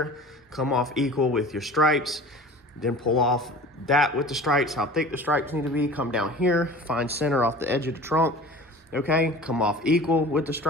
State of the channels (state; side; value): normal; both; correlation 0.41